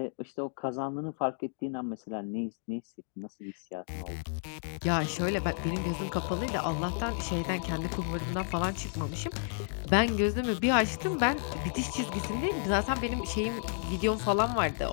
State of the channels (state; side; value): silent; right; digital silence